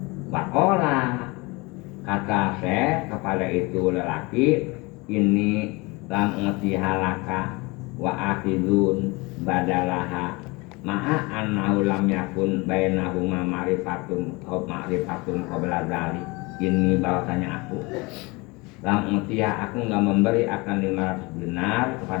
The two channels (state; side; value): quieter; right; 25.5 dB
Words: Wakola kata Syekh kepada itu lelaki, ini lam ngeti halaka wa akhidun badalaha ma'a annahu lam yakun bainahuma ma'rifatun qabla dzalik. Ini bahwasanya aku lam ngetiha, aku enggak memberi akan 500 dinar